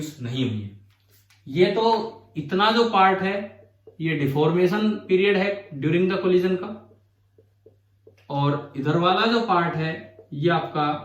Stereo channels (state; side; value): identical; both; correlation 1.00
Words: नहीं हुई है। ये तो इतना जो पार्ट है ये डिफॉर्मेशन पीरियड है ड्यूरिंग द कोलिजन का, और इधर वाला जो पार्ट है ये